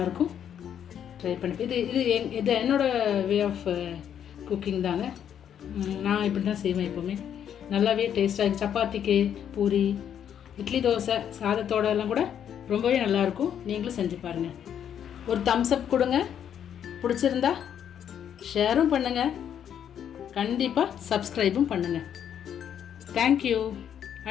ட்ரை பண்ணி இது என்னோடய வே ஆஃப் குக்கிங் தாங்க. நான் இப்படி தான் செய்வேன் எப்போவுமே. நல்லாவே டேஸ்ட்டாக சப்பாத்திக்கு, பூரி, இட்லி, தோசை, சாதத்தோடலாம் கூட ரொம்பவே நல்லாயிருக்கும். நீங்களும் செஞ்சு பாருங்கள். ஒரு தம்ஸ் அப் கொடுங்க. பிடிச்சிருந்தா ஷேரும் பண்ணுங்கள். கண்டிப்பாக சப்ஸ்கிரைபும் பண்ணுங்கள். தேங்க்யூ.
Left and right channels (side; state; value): right; quieter; 9.1 dB